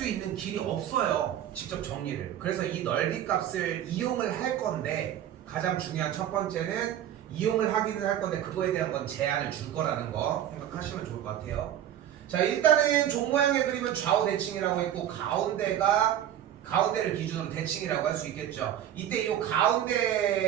있는 길이 없어요. 직접 정리를. 그래서 이 넓이 값을 이용을 할 건데, 가장 중요한 첫 번째는 이용을 하기는 할 건데 그거에 대한 건 제한을 줄 거라는 거 생각하시면 좋을 것 같아요. 자, 일단은 종 모양의 그림은 좌우 대칭이라고 했고, 가운데를 기준으로 대칭이라고 할 수 있겠죠. 이때 이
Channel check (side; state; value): left; quieter; 11.0 dB